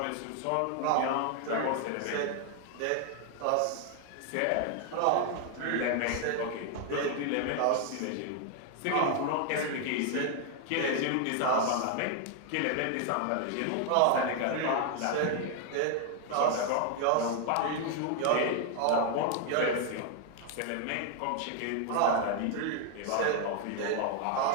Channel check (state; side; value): different; both; correlation 0.00